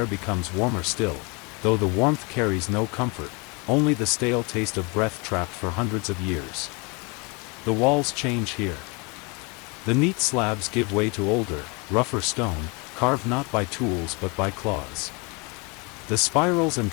becomes warmer still, though the warmth carries no comfort, only the stale taste of breath trapped for hundreds of years. The walls change here. The neat slabs give way to older, rougher stone, carved not by tools but by claws. The spirals and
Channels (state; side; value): quieter; right; 30.2 dB